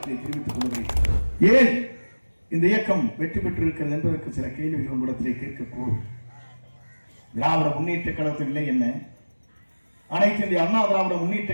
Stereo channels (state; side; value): inverted; both; correlation -1.00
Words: தெரிவித்துக் கொள்கிறேன். ஏன் இந்த இயக்கம் வெற்றி பெற்றிருக்கிறது என்பதற்கு சில கேள்விகள் உங்களிடத்திலே கேட்கக்கூடும். திராவிட முன்னேற்ற கழகத்தின் நிலை என்ன, அனைத்து இந்திய அண்ணா திராவிட முன்னேற்ற